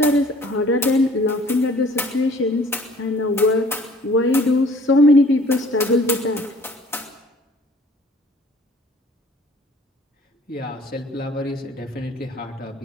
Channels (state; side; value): normal; both; correlation 0.53